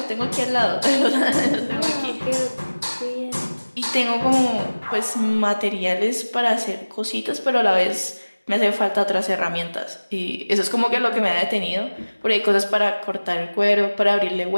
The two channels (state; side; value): inverted; both; correlation -1.00